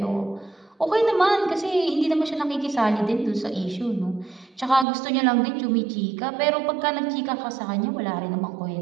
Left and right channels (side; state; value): left; drops out; at 4.9 s